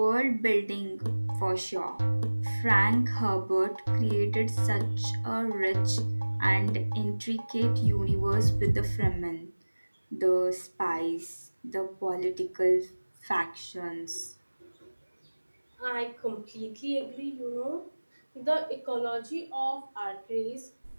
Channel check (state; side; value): inverted; both; correlation -1.00